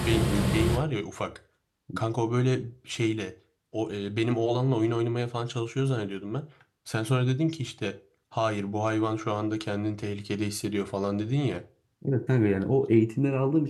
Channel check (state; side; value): identical; both; correlation 1.00